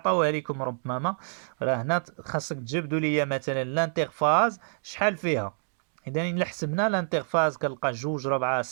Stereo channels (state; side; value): silent; left; digital silence